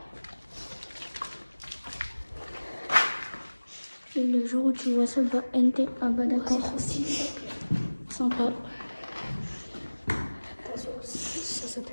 Et le jour où tu vois ça, bah NT, ah bah d'accord. Sympa. Ça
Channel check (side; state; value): both; inverted; correlation -1.00